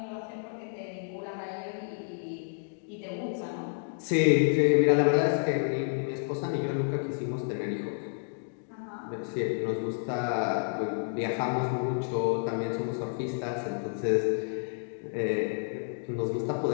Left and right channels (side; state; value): right; silent; digital silence